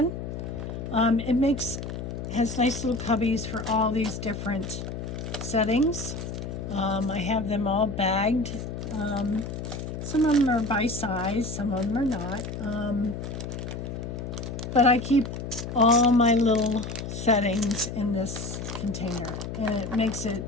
It has nice little cubbies for all these different settings. I have them all bagged. Some of them are by size, some of them are not. But I keep all my little settings in this container, and it makes it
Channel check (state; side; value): noise; left; hum, 6 dB below the sound